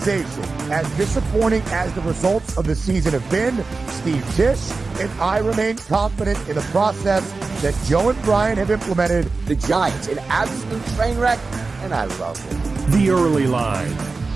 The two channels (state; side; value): quieter; left; 4.0 dB